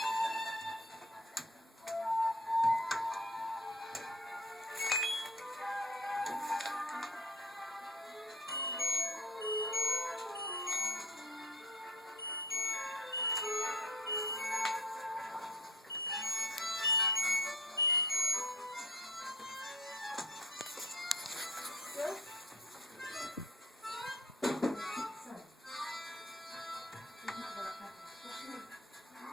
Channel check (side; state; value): both; normal; correlation 0.46